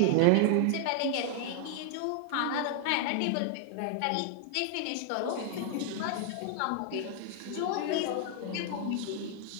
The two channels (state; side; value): different; both; correlation 0.00